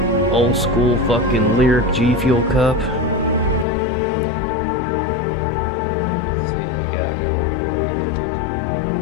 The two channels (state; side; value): drops out; right; at 3.7 s